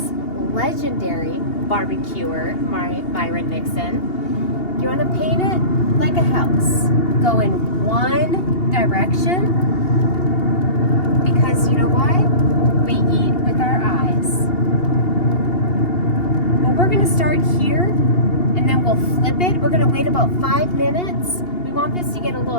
legendary barbecuer Myron Mixon, you want to paint it like a house. Go in one direction, because you know why? We eat with our eyes. Well, we're going to start here and then we'll flip it. We're gonna wait about 5 minutes. We want this to get a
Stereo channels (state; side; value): late; right; 2.8 ms